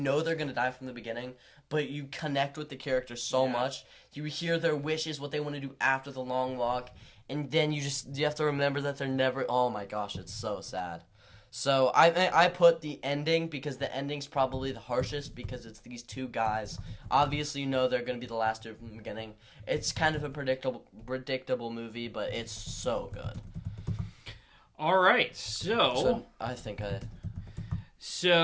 they're going to die from the beginning, but you connect with the characters so much. You hear their wishes, what they want to do after the long walk, and then you have to remember that they're never... Oh my gosh, it's so sad. So I put the ending because the ending's probably the harshest because it's these 2 guys. Obviously, you know they're going to be the last 2 from the beginning. It's kind of a predictable movie, but it's so good. All right, so I think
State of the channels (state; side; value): identical; both; correlation 1.00